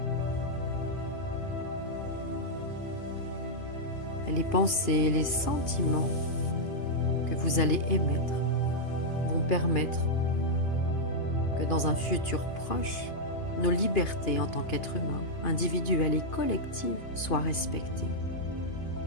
Et les pensées et les sentiments que vous allez émettre vont permettre que dans un futur proche, nos libertés en tant qu'êtres humains, individuelles et collectives, soient respectées.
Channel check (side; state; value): right; late; 2.7 ms